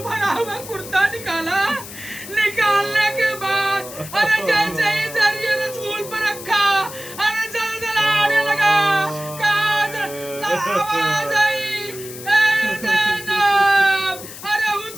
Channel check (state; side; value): noise; left; hiss, 13 dB below the sound